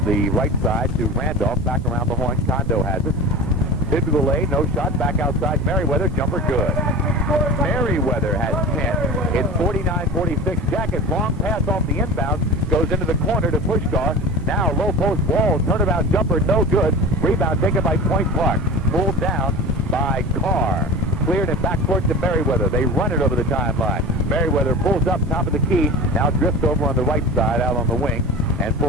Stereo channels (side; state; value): both; normal; correlation 0.32